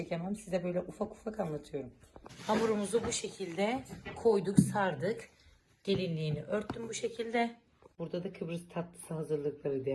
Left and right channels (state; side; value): identical; both; correlation 1.00